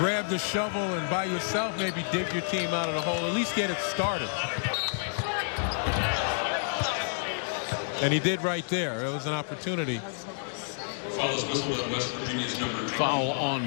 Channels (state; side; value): silent; right; digital silence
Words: the shovel and by yourself maybe dig your team out of the hole, at least get it started. And he did right there. It was an opportunity. Foul